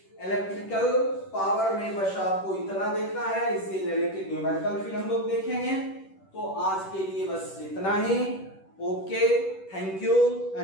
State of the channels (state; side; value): late; right; 10 ms